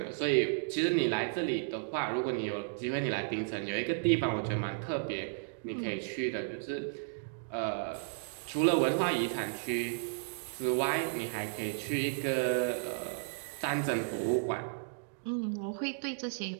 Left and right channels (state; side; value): silent; left; digital silence